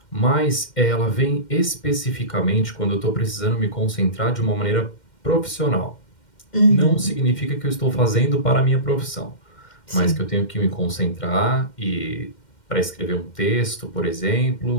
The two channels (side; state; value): right; late; 2.1 ms